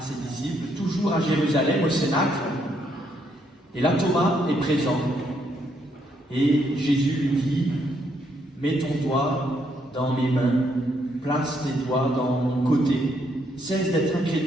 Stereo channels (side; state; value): both; normal; correlation 0.74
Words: ses disciples, toujours à Jérusalem, au Cénacle. Et là, Thomas est présent. Et Jésus lui dit, « Mets ton doigt dans mes mains, place tes doigts dans mon côté, cesse d'être